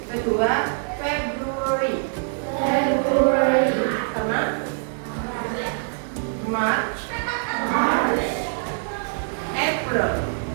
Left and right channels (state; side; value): silent; left; 60 dB below the other